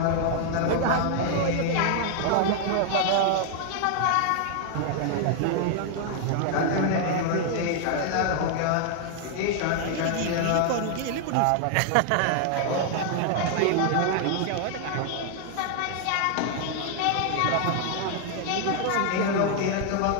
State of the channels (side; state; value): both; different; correlation 0.00